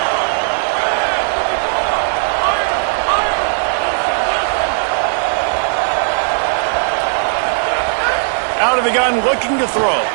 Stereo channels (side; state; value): left; silent; digital silence